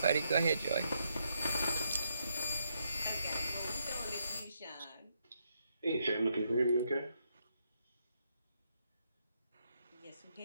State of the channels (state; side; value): inverted; both; correlation -0.78